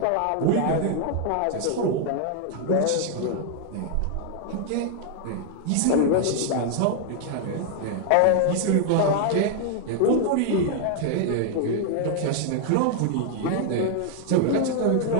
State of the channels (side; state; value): both; different; correlation 0.00